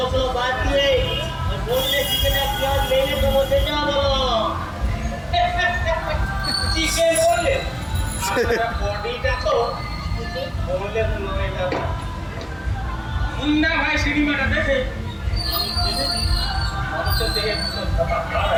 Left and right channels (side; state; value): both; identical; correlation 1.00